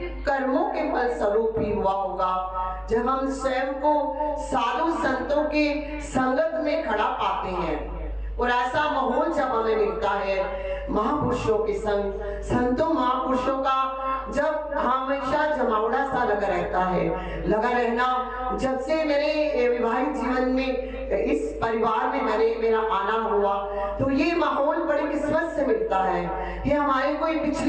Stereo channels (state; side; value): identical; both; correlation 1.00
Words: कर्मों के फल स्वरूप ही हुआ होगा। जब हम स्वयं को साधु संतों के संगत में खड़ा पाते हैं और ऐसा माहौल जब हमें मिलता है महापुरुषों के संग, संतों महापुरुषों का जब हमेशा जमावड़ा सा लगा रहता है, लगा रहना। जब से मेरे विवाहित जीवन में इस परिवार में मेरा आना हुआ, तो ये माहौल बड़ी किस्मत से मिलता है। ये हमारे कोई